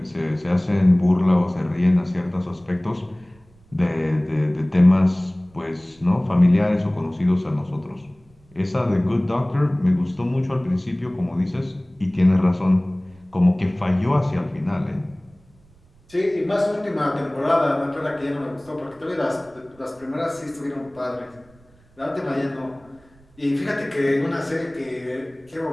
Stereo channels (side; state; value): right; noise; rumble, 29 dB below the sound